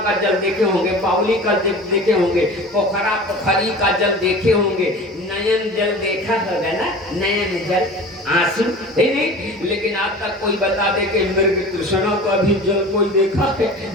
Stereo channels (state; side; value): normal; both; correlation 0.38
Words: का जल देखे होंगे, बावली का जल देखे होंगे, पोखरा पोखरी का जल देखे होंगे, नयन जल देखा होगा ना, नयन जल आंसू है नहीं। लेकिन आज तक कोई बता दे कि मृग तृष्णा का भी जल कोई देखा है?